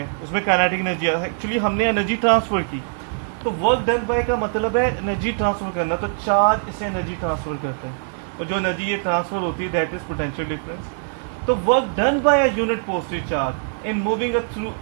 उसमें काइनेटिक एनर्जी, एक्चुअली हमने एनर्जी ट्रांसफर की। तो वर्क डन बाय का मतलब है एनर्जी ट्रांसफर करना, तो चार्ज इसे एनर्जी ट्रांसफर करता है और जो एनर्जी ये ट्रांसफर होती है दैट इज पोटेंशियल डिफरेंस। तो work done by a unit positive charge in moving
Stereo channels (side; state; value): left; silent; 59 dB below the other